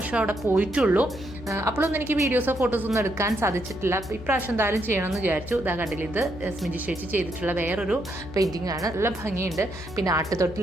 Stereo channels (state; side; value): noise; left; hum, 14 dB below the sound